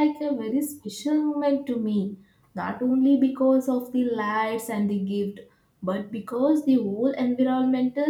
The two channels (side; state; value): both; identical; correlation 1.00